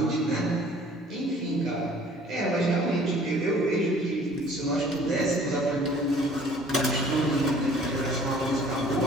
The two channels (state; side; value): normal; both; correlation 0.53